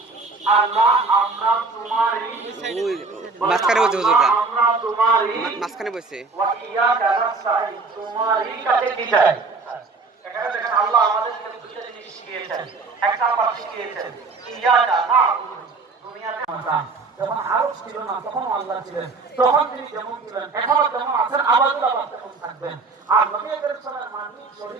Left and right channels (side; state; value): left; quieter; 4.0 dB